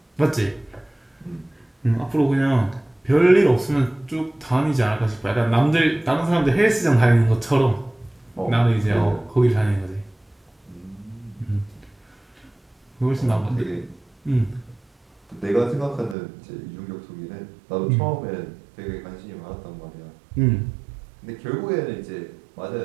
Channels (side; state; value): left; drops out; at 16.2 s